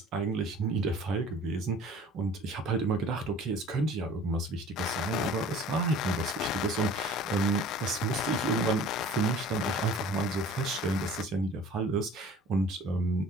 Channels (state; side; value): normal; both; correlation 0.47